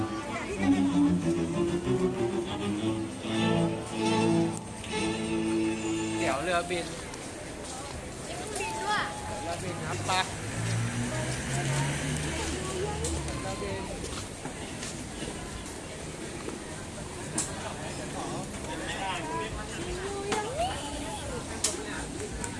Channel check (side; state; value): both; identical; correlation 1.00